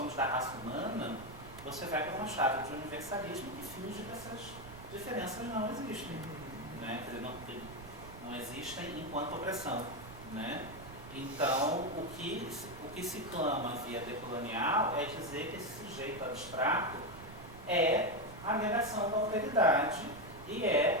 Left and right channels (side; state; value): right; noise; rumble, 15 dB below the sound